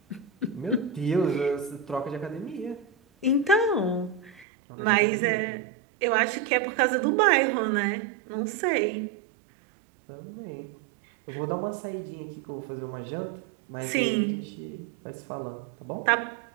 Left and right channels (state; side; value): drops out; left; at 4.5 s